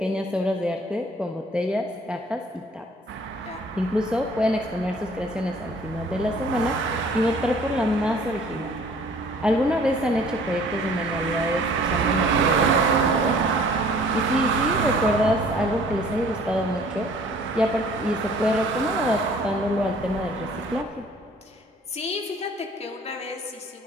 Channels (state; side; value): normal; both; correlation 0.54